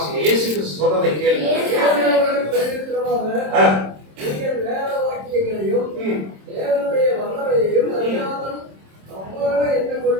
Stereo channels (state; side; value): late; left; 26 ms